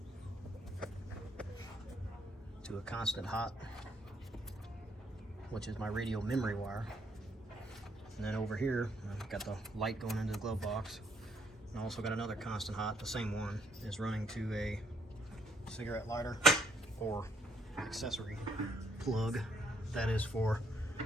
to a constant hot, which is my radio memory wire. And then over here, I've got the light going into the glove box. And I also got another constant hot, the same one, is running to a cigarette lighter or accessory plug. That is for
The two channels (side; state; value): both; normal; correlation 0.71